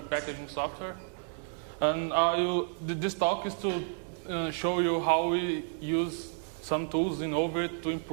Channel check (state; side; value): silent; left; digital silence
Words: packaging software. And this talk is to show you how we use some tools in Overt to